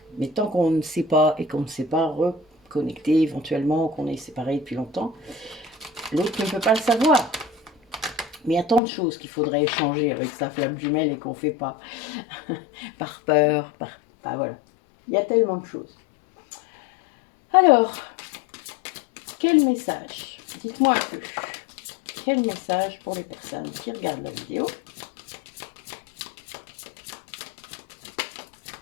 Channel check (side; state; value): right; drops out; at 8.8 s